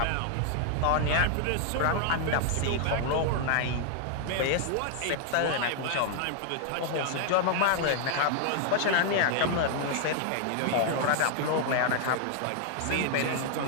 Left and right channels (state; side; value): different; both; correlation 0.00